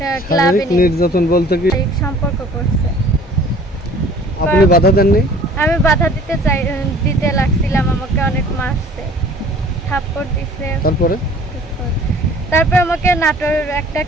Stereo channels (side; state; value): both; normal; correlation 0.50